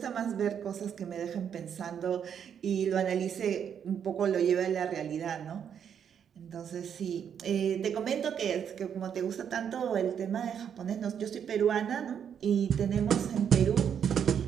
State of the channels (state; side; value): quieter; left; 8.2 dB